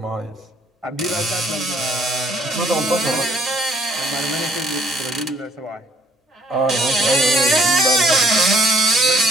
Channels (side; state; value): both; normal; correlation 0.62